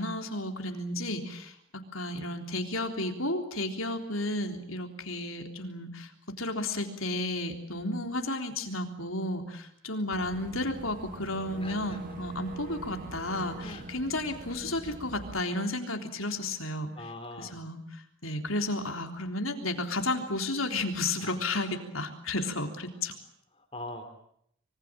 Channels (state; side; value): normal; both; correlation 0.23